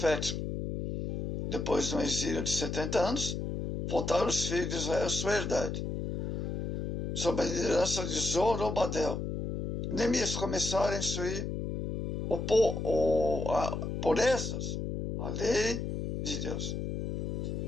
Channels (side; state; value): left; noise; hum, 3 dB below the sound